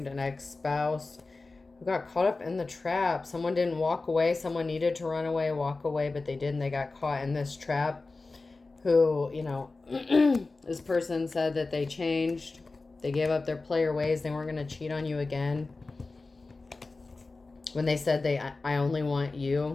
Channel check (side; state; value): right; quieter; 3.6 dB